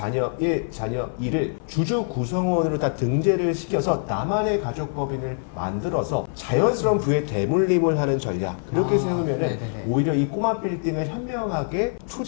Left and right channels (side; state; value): right; silent; 59 dB below the other